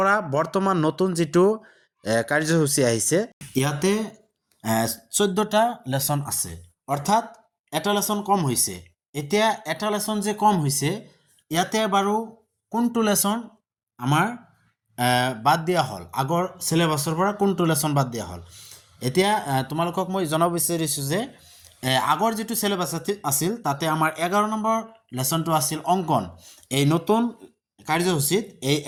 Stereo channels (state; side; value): identical; both; correlation 1.00